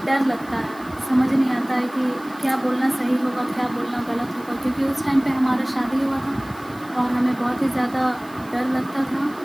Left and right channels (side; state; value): right; noise; hiss, 24 dB below the sound